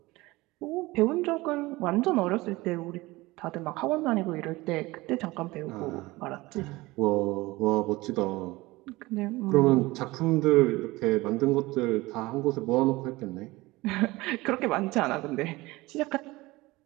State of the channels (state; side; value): quieter; left; 20.7 dB